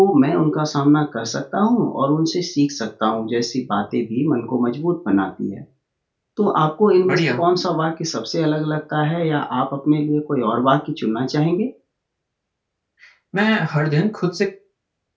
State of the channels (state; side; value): identical; both; correlation 1.00